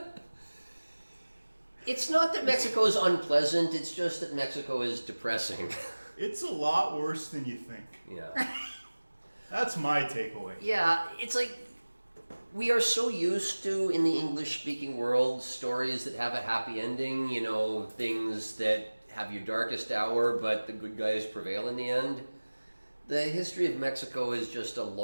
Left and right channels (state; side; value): inverted; both; correlation -1.00